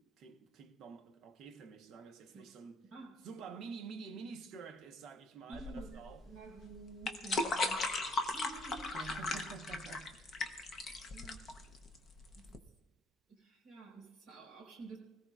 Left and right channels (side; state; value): both; normal; correlation 0.64